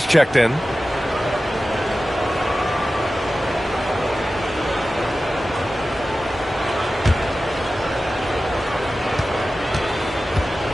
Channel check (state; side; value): normal; both; correlation 0.95